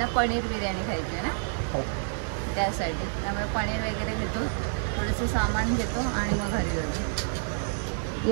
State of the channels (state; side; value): silent; left; digital silence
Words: पनीर बिर्याणी खायची आहे ना, त्यासाठी. त्यामुळे पनीर वगैरे घेतो, थोडंसं सामान घेतो आणि मग घरी जातो. ही